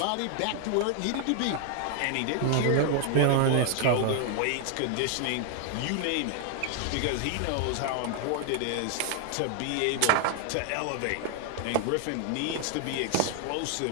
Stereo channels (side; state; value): both; different; correlation 0.00